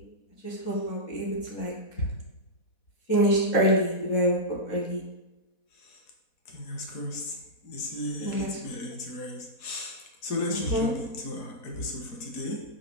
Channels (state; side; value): late; right; 4.1 ms